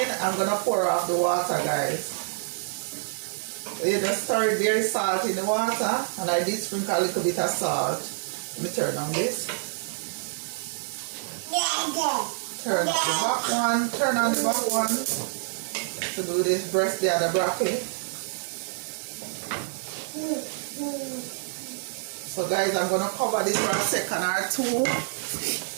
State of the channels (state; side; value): silent; left; digital silence